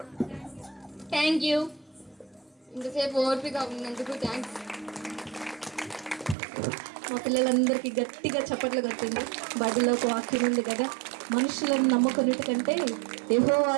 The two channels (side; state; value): left; drops out; at 6.4 s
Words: Thank you. ఇంతసేపు ఓర్పిగా ఉన్నందుకు థ్యాంక్స్. మా పిల్లలందరికీ గట్టిగా చప్పట్లు కొట్టింది. బైబిల్లో ఒక వాక్యం ఉంది కదా, మనుషులను నమ్ముకున్నట్టు కంటే